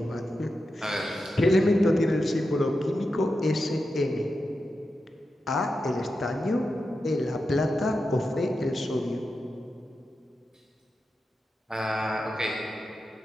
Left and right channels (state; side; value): normal; both; correlation 0.89